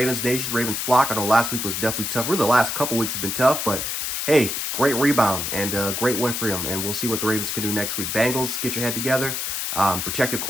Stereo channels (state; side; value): noise; left; hiss, 2 dB below the sound